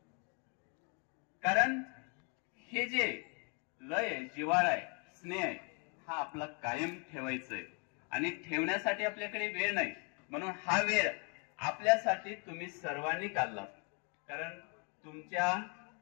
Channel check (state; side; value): quieter; right; 36.7 dB